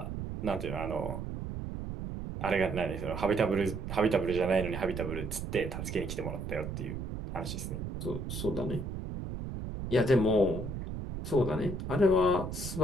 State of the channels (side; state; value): right; noise; rumble, 6 dB below the sound